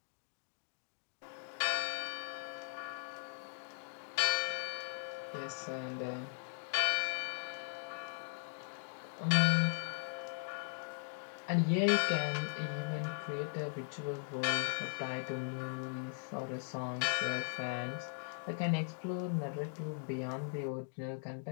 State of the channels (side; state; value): right; silent; digital silence